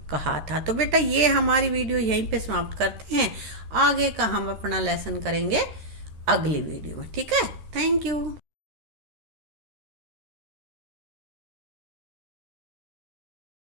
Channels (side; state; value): left; late; 13 ms